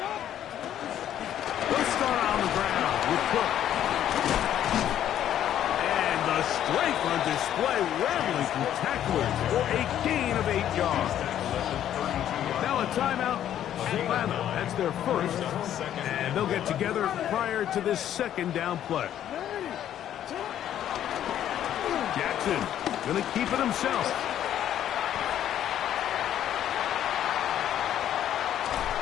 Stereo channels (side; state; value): right; quieter; 10.9 dB